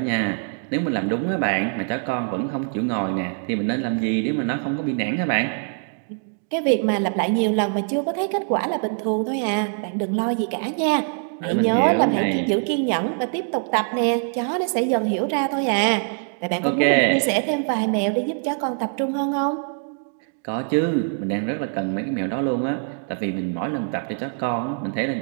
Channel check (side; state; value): left; silent; 59 dB below the other